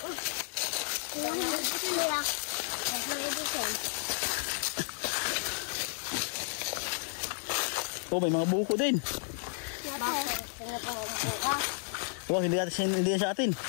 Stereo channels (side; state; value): right; silent; digital silence